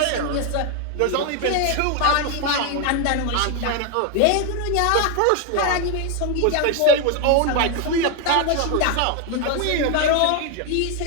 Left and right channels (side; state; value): both; different; correlation 0.01